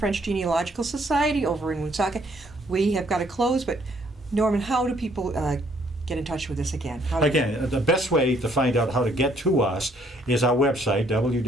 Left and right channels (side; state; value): both; normal; correlation 0.66